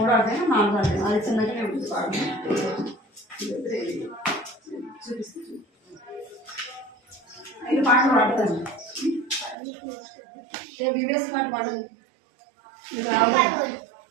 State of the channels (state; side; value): drops out; left; at 9.6 s